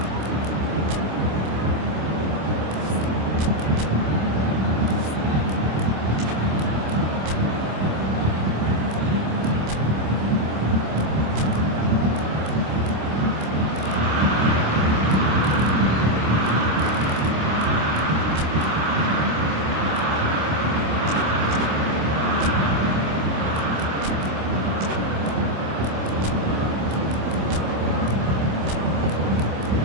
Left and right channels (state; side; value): late; left; 26 ms